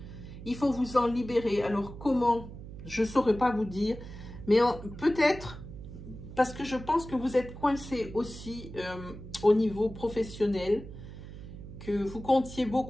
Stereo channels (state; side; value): noise; right; hum, 13 dB below the sound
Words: Il faut vous en libérer. Alors, comment? Je ne saurais pas vous dire. Mais peut-être, parce que je pense que vous êtes coincé aussi au niveau professionnel, que vous comptiez